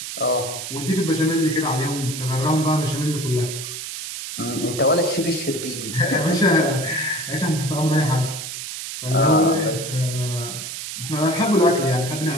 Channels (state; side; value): noise; right; hiss, 7 dB below the sound